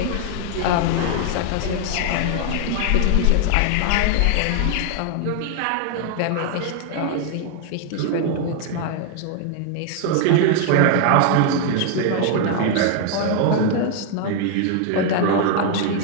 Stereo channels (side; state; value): both; different; correlation 0.00